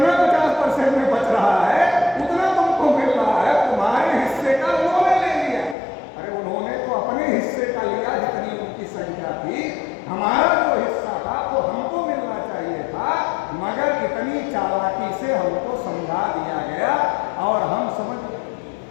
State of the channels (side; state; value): right; drops out; at 5.8 s